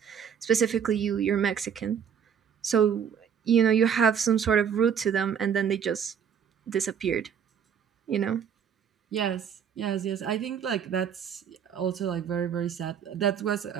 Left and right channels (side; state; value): left; quieter; 7.8 dB